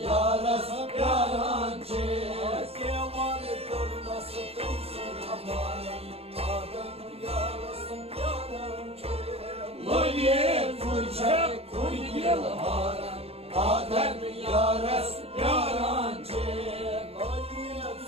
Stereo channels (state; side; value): late; left; 0.29 ms